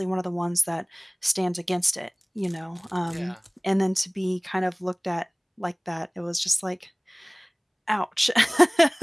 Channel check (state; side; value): identical; both; correlation 1.00